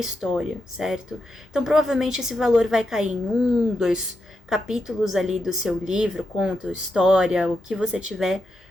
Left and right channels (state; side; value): normal; both; correlation 0.85